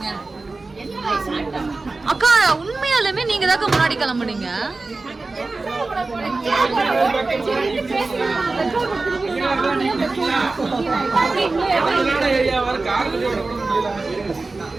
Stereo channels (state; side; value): quieter; left; 3.5 dB